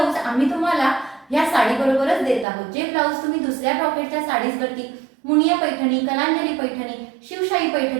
आम्ही तुम्हाला या साडी बरोबरच देत आहोत। जे ब्लाउज तुम्ही दुसऱ्या ब्रॉकेटच्या साडीजवरती, मुनिया पैठणी, कलांजली पैठणी, शिवशाही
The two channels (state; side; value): drops out; left; at 2.5 s